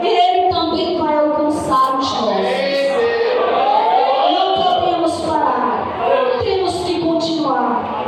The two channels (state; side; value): identical; both; correlation 1.00